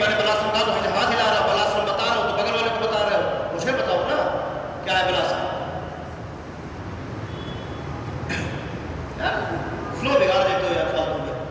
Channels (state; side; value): identical; both; correlation 1.00